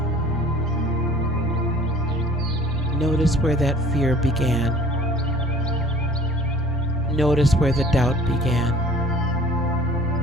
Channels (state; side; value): normal; both; correlation 0.51